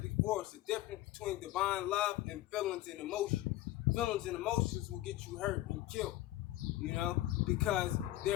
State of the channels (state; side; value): quieter; right; 15.8 dB